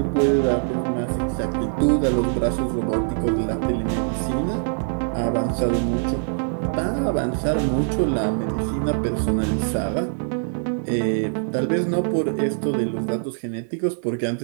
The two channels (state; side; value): silent; left; 63 dB below the other